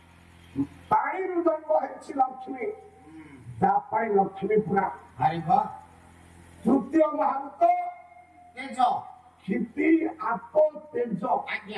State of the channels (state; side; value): identical; both; correlation 1.00